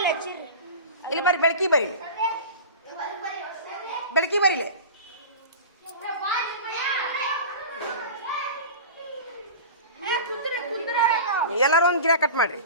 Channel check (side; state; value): both; inverted; correlation -0.32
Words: ಇಲ್ಲಿ ಬರ್ರಿ ಬೆಳಕಿ ಬರೀಲಿ ಬೆಳಕಿ ಬರೀಲಿ ಎಲ್ಲರೂ ಒಂದು ಗಿಡ ಕಟ್ ಮಾಡ್ರಿ